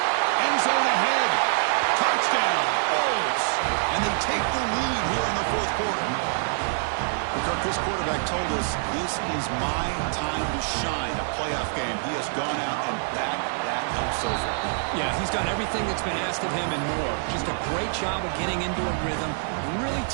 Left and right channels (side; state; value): left; silent; 61 dB below the other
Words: End zone ahead. Touchdown. Bulls. And they take the lead here in the fourth quarter. Kirk, this quarterback told us this is my time to shine, a playoff game. He has gone out and backed that up so far. Yeah, he's done everything that's been asked of him and more. Just a great job of getting into a rhythm. Really